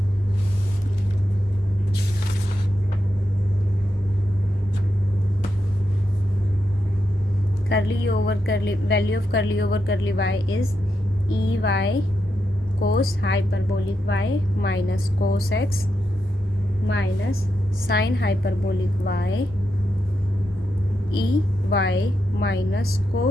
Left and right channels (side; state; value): both; normal; correlation 0.85